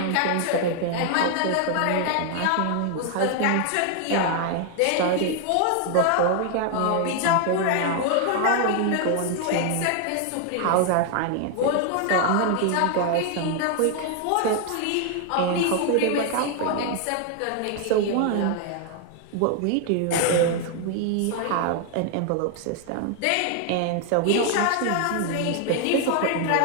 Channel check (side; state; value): both; different; correlation 0.00